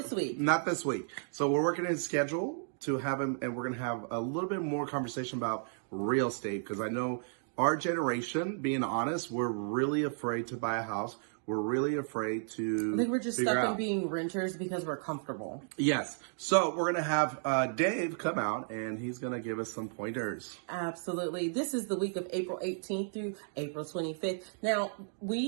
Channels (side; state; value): left; silent; digital silence